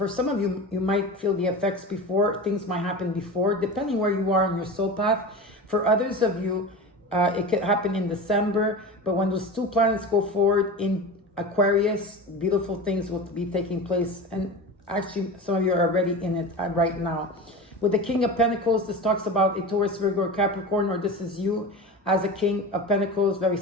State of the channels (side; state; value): both; normal; correlation 0.29